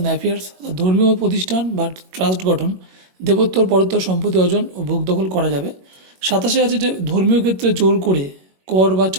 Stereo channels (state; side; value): late; left; 21 ms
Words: affairs, ধর্মীয় প্রতিষ্ঠান বা ট্রাস্ট গঠন, দেবোত্তর পরোত্তর সম্পত্তি অর্জন ও ভোগ দখল করা যাবে। 27 আছে যে ধর্মীয় ক্ষেত্রে জোর করে কর বা